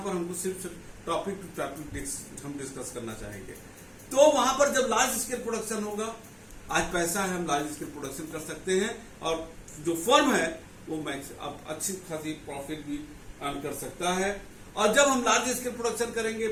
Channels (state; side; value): identical; both; correlation 1.00